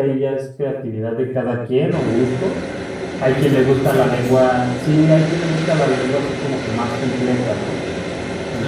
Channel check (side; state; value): both; identical; correlation 1.00